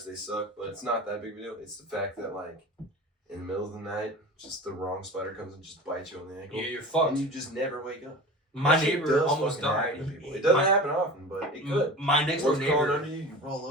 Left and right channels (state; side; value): normal; both; correlation 0.35